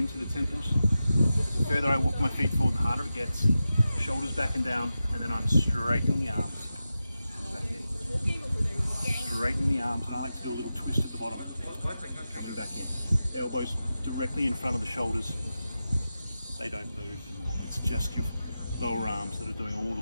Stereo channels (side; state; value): both; inverted; correlation -0.92